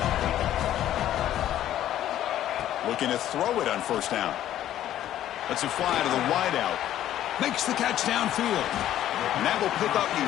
Looking to throw it on first down. Lets it fly to the wideout. Makes the catch downfield. And that will pick up the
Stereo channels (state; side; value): quieter; right; 12.2 dB